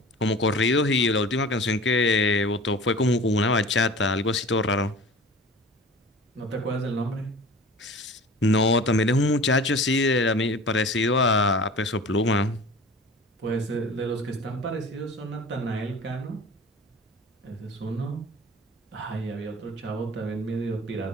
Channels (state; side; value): normal; both; correlation 0.40